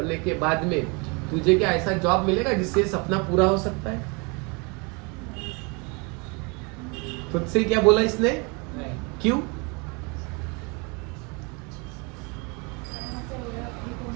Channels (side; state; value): left; quieter; 30.7 dB